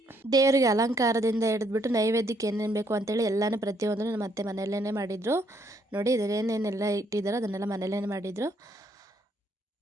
ದೇವರಿಗೆ ಅಲಂಕಾರದಿಂದ ಹಿಡಿದ್ಬಿಟ್ಟು ನೈವೇದ್ಯಕ್ಕೆ ಏನೇನು ಬೇಕು ಅಂತೇಳಿ ಎಲ್ಲನೂ ಪ್ರತಿಯೊಂದನ್ನು ನಮ್ಮ ಅತ್ತೆ ಮನೆಯಲ್ಲೇ ಮಾಡಿದರು. ನೋಡಿ, ಇದನ್ನೇನೆಲ್ಲ ಇಟ್ಟಿದ್ದಾರೋ ಅದನ್ನೆಲ್ಲ ಮನೆಯಲ್ಲೇ ಮಾಡಿದರು.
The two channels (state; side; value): normal; both; correlation 0.70